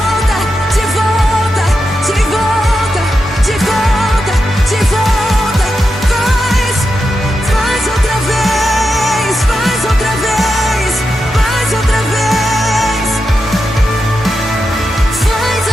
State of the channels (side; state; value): both; normal; correlation 0.88